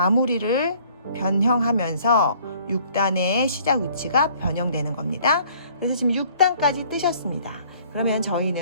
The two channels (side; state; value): both; inverted; correlation -0.57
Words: 변형하면서 6단의 시작 위치가 변형되는 겁니다. 그래서 지금 6단까지 뜨셨습니다. 그러면